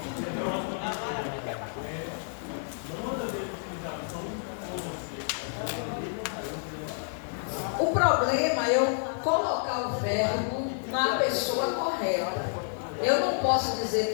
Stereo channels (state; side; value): silent; right; 58 dB below the other